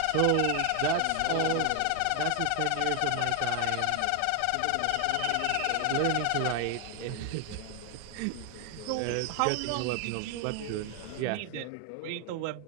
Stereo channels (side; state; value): both; different; correlation 0.01